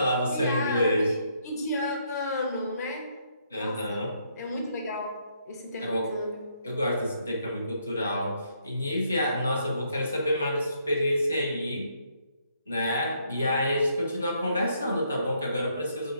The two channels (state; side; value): inverted; both; correlation -0.72